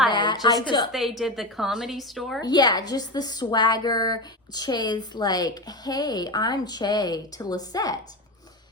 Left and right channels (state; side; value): normal; both; correlation 0.20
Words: that. Just because they did the Comedy Store? Yeah, just the swagger. Che's like, "Hey, I'm Che," to Lisette.